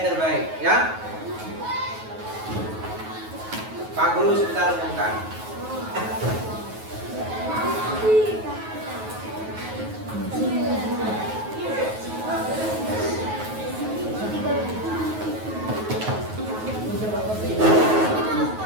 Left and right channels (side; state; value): left; late; 9.3 ms